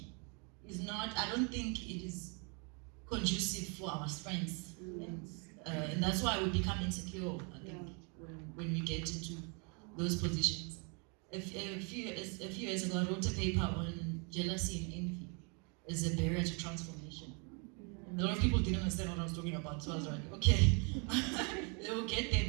is not, I don't think it is conducive for our strengths, and that's why we become insecure, I think, when we get into those positions. A few years ago, I wrote a paper on jealousy and envy as a barrier to transformation. And a lot of people didn't understand what I was talking about, so I was like, okay, they will get there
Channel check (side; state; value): left; quieter; 34.8 dB